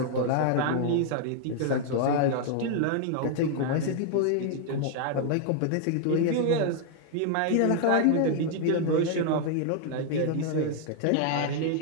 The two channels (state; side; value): different; both; correlation 0.00